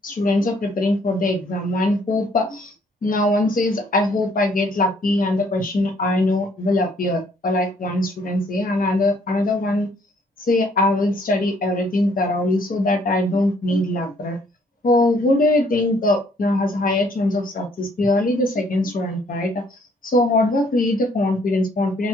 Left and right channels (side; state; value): both; normal; correlation 0.64